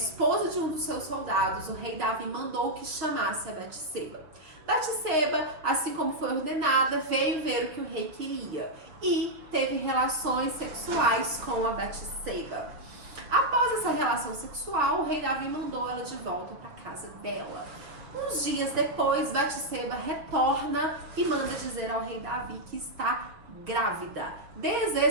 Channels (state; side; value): late; left; 6.1 ms